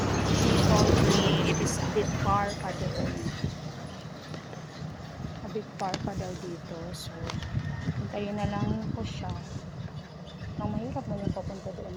she told me it is a bit far pa doon. A bit far pa daw dito. So, hintayin na lang ko siya. Ang mahirap mo yung papunta doon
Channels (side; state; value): both; identical; correlation 1.00